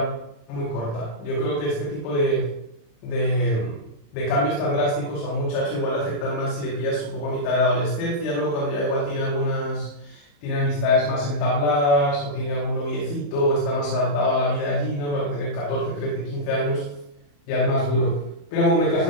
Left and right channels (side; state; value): right; late; 35 ms